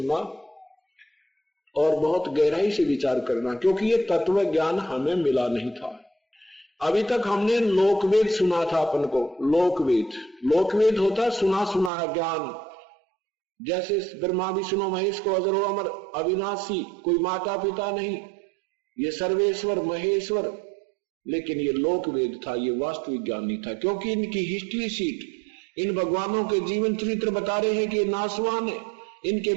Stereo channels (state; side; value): drops out; left; at 11.9 s